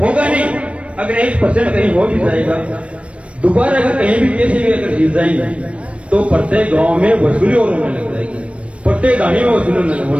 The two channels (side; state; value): left; late; 0.062 ms